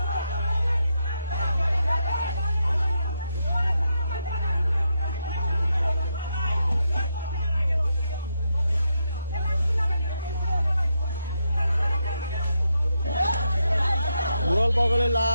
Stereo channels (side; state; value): both; inverted; correlation -0.82